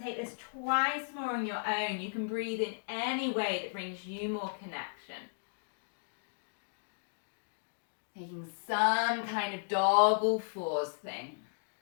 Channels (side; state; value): right; silent; digital silence